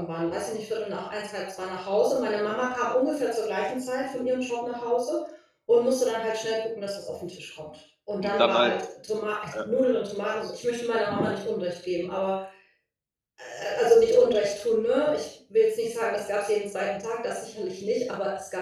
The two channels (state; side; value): identical; both; correlation 1.00